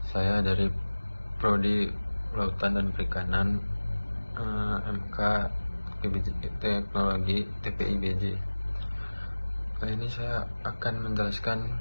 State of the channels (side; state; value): both; inverted; correlation -1.00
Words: Saya dari Prodi Lautan dan Perikanan, MK Teknologi TPI BJ. Kali ini saya akan menjelaskan